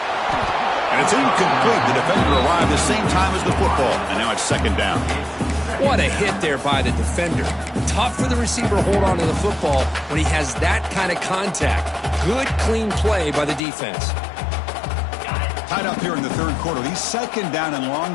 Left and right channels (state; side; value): drops out; right; at 13.6 s